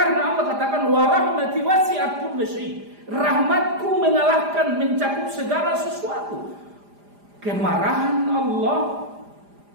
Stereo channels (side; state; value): left; late; 4.9 ms